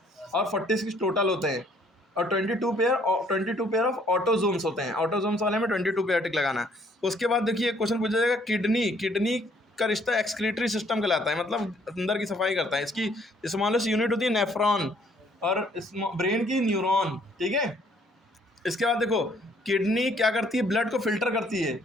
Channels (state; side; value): normal; both; correlation 0.63